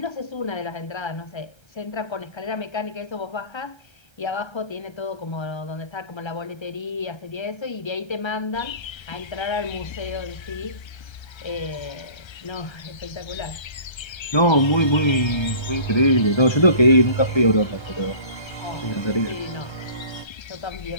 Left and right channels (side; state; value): right; late; 1.3 ms